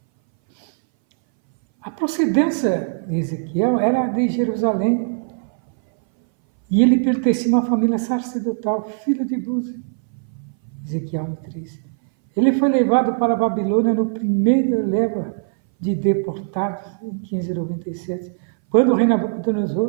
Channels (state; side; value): silent; left; 61 dB below the other